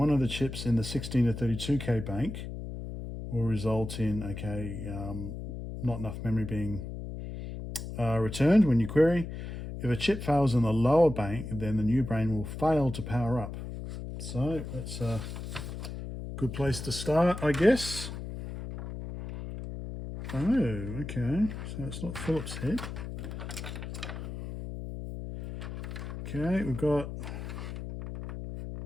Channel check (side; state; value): left; noise; hum, 8 dB below the sound